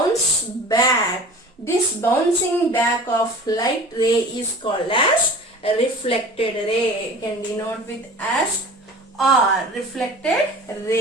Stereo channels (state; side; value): normal; both; correlation 0.41